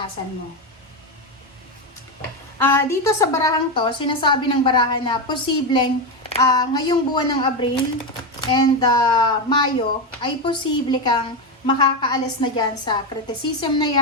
mo. Dito sa barahang to, sinasabi ng barahan na posibleng ngayong buwan ng Abril and Mayo, ay posible kang makakaalis na dyan sa criticism na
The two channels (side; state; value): both; normal; correlation 0.11